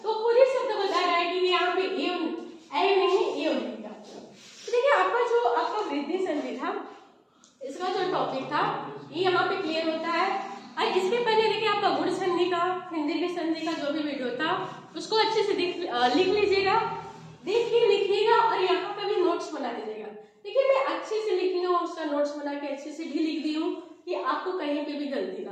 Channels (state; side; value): identical; both; correlation 1.00